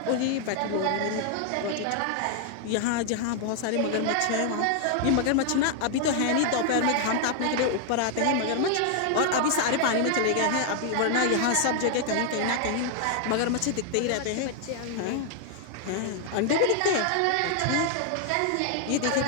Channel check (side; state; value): both; different; correlation 0.00